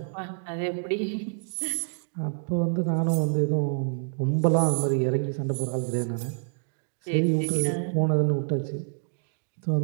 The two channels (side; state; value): left; silent; digital silence